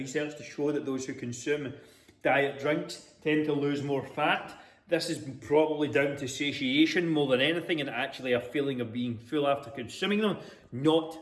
to show that those who consume diet drinks tend to lose more fat. This is probably down to satiation more than anything, and actually a feeling of being full after consuming them,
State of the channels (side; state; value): both; identical; correlation 1.00